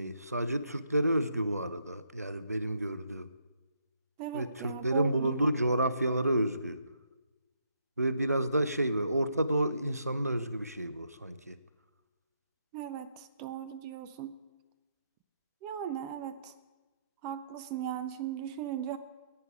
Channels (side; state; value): both; inverted; correlation -0.75